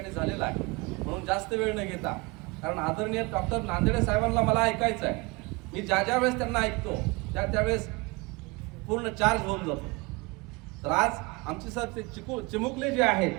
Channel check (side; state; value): left; quieter; 25.6 dB